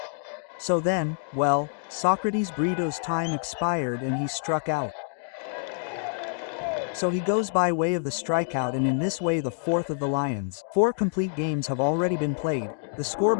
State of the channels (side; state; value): right; silent; digital silence